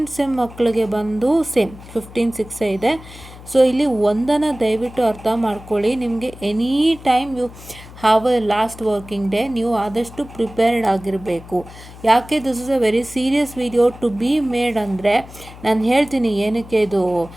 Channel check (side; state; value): left; noise; hum, 18 dB below the sound